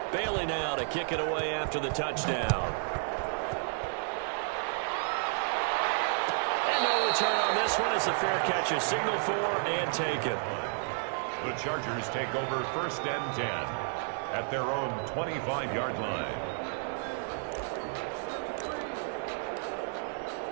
Bailey now to kick it away after the touchdown. And no return on this one as the fair catch is signaled for and taken. The Chargers take over 1st and 10 at their own 25-yard line.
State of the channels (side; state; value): left; silent; 57 dB below the other